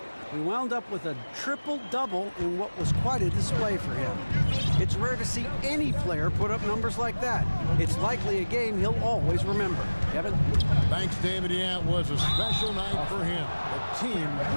We wound up with a triple-double in what was quite a display for him. It's rare to see any player put up numbers like that. It's likely a game he'll always remember. Kevin? Thanks, David. Yeah, it was a special night for him. The team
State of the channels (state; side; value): inverted; both; correlation -1.00